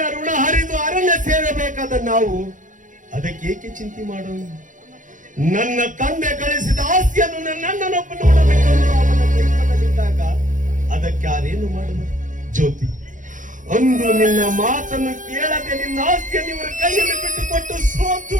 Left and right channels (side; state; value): left; late; 0.37 ms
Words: ಋಣ ಹರಿದು ಅರಣ್ಯ ಸೇರಬೇಕಾದ ನಾವು ಅದಕ್ಕೆ ಏಕೆ ಚಿಂತೆ ಮಾಡೋಣ? ನನ್ನ ತಂದೆ ಗಳಿಸಿದ ಆಸ್ತಿಯನ್ನು ನನ್ನನ್ನೊಬ್ಬ ನೋಡಬೇಕು. ಅವನ ಕೈಪದಲ್ಲಿದ್ದಾಗ ಅದಕ್ಕೆ ಯಾರೇನು ಮಾಡುವುದು? ಜ್ಯೋತಿ, ಅಂದು ನಿನ್ನ ಮಾತನ್ನು ಕೇಳದೆ ನಿನ್ನ ಆಸ್ತಿಯನ್ನು ಇವರ ಕೈಯಲ್ಲಿ ಬಿಟ್ಟುಕೊಟ್ಟು ಸೋತು